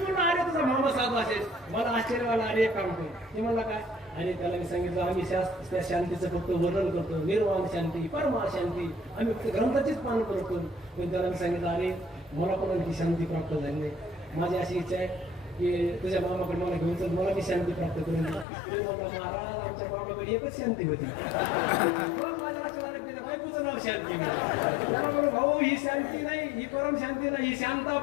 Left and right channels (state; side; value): drops out; right; at 18.4 s